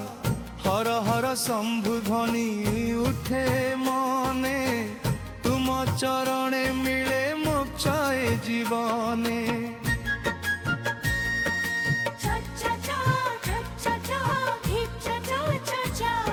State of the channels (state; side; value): identical; both; correlation 1.00